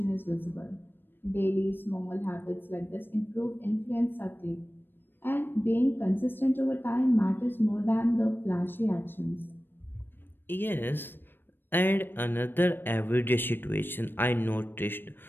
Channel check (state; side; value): late; right; 0.097 ms